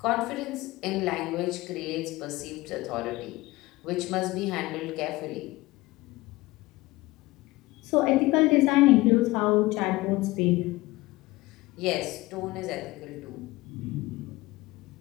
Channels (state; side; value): quieter; right; 19.9 dB